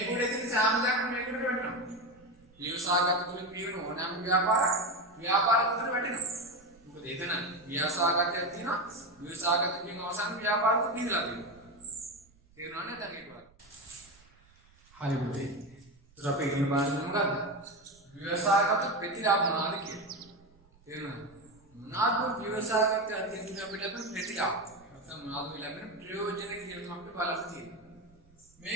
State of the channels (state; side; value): noise; right; rumble, 29 dB below the sound